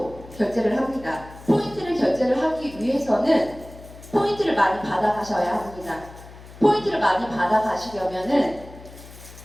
결제를 합니다. 포인트를 결제를 하기 위해서는 포인트를 많이 받아가셔야 합니다. 포인트를 많이 받아가시려면은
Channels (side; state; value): left; noise; hum, 18 dB below the sound